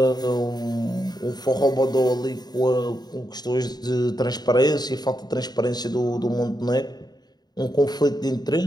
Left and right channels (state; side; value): late; right; 0.20 ms